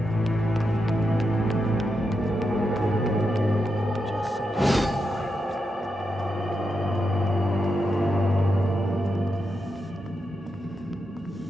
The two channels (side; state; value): both; normal; correlation 0.86